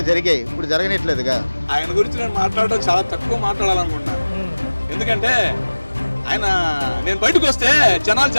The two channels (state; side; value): inverted; both; correlation -1.00